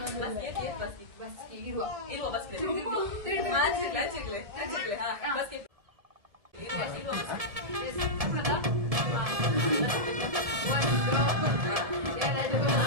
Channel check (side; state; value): left; late; 1.7 ms